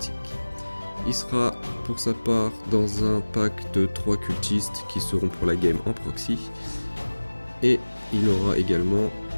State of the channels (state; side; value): inverted; both; correlation -1.00